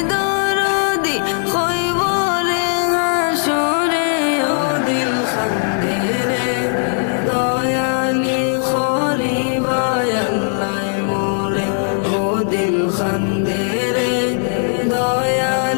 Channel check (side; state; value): right; silent; digital silence